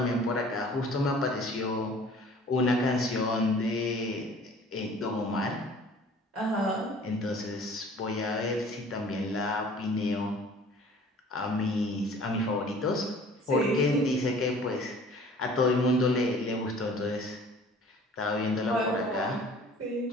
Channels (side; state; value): both; normal; correlation 0.49